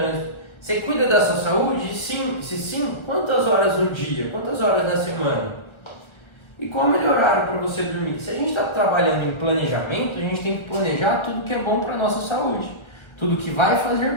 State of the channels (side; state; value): right; late; 1.4 ms